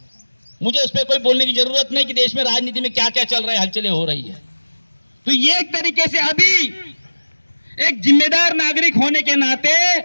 मुझे उस पर कोई बोलने की जरूरत नहीं कि देश में राजनीति में क्या क्या चल रहा है, हलचलें हो रही है। तो ये एक तरीके से अभी एक जिम्मेदार नागरिक होने के नाते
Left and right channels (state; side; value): inverted; both; correlation -1.00